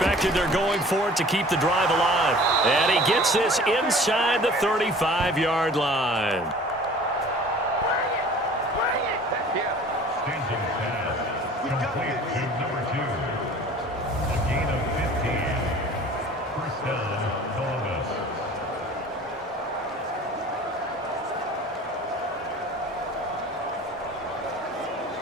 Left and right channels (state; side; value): normal; both; correlation 0.46